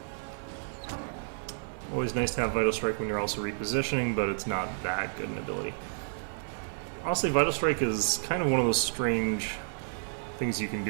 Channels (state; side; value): silent; left; 57 dB below the other